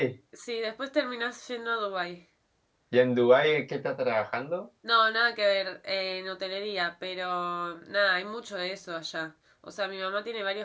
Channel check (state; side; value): identical; both; correlation 1.00